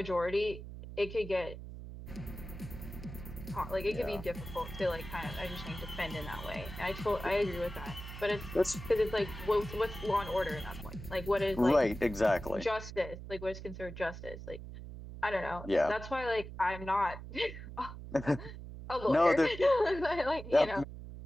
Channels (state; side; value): noise; right; hum, 11 dB below the sound